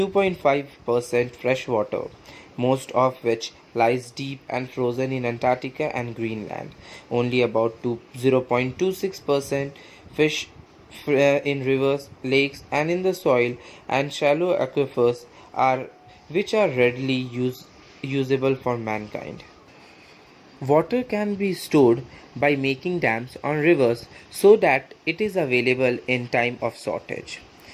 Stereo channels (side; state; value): both; identical; correlation 1.00